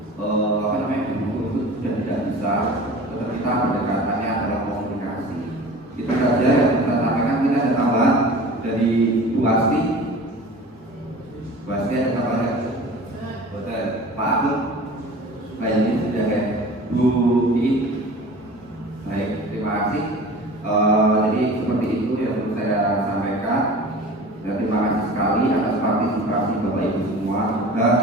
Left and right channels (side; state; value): both; normal; correlation 0.40